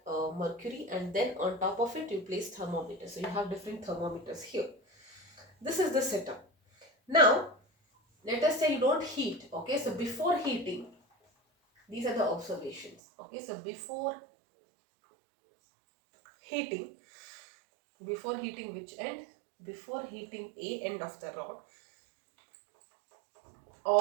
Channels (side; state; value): left; drops out; at 13.0 s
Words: mercury, and then on top of it you place thermometer. So you have different thermometers here. This is the setup. Now let us say you don't heat. Okay, so before heating, these are the observations. Okay, so before heating which end? Before heating A end of the rod,